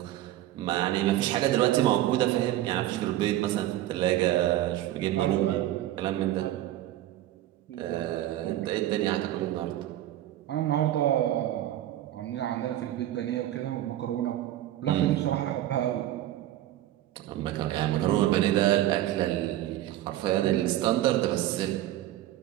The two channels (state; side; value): quieter; left; 13.8 dB